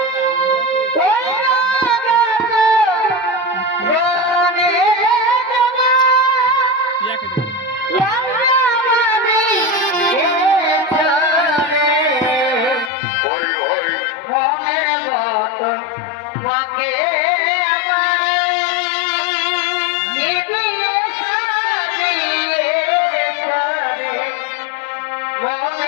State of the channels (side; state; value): right; drops out; at 12.9 s